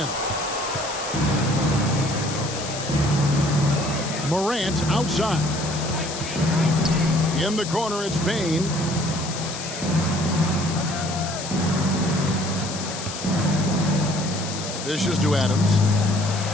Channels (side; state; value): left; noise; hiss, 8 dB below the sound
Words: Morant outside. In the corner, it's Bane. Dishes to Adams.